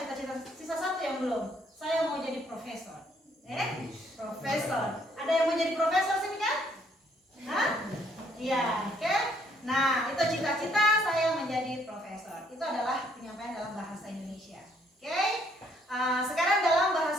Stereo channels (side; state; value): both; normal; correlation 0.67